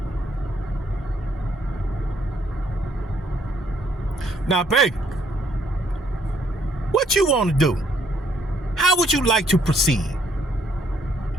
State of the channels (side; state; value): both; normal; correlation 0.68